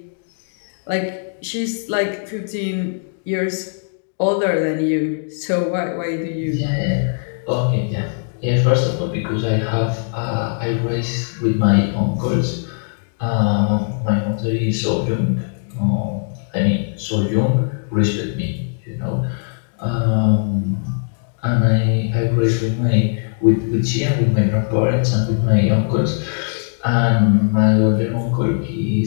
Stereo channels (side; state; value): right; silent; digital silence